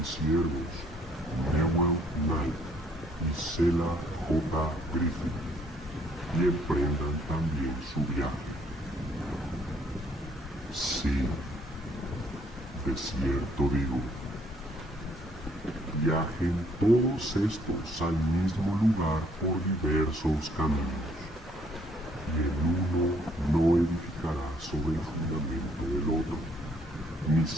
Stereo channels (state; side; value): normal; both; correlation 0.65